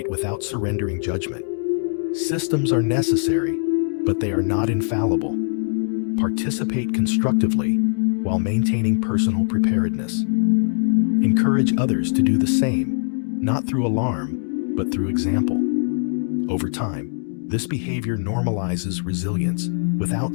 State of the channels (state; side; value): silent; right; digital silence